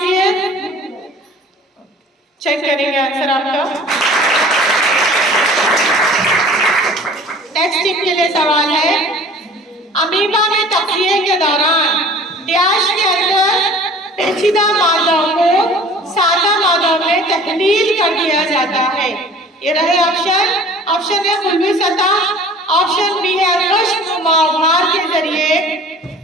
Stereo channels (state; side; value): normal; both; correlation 0.47